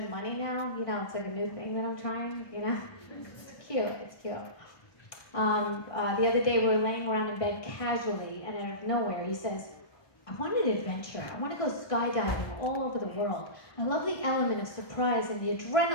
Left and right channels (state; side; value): late; right; 1.2 ms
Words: money now. You know, it's like a new thing that I'm trying, you know? It's cute, it's cute. The other day we were laying around in bed casually, and out of nowhere he says, I want an adventure. I want to go skydiving all over the world. I love the element of surprise and the